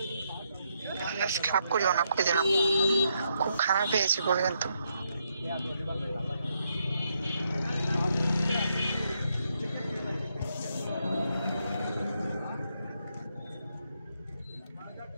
খারাপ করিও না, কই দিলাম খুব খারাপ হয়েছে বলে কিন্তু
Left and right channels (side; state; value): both; inverted; correlation -0.78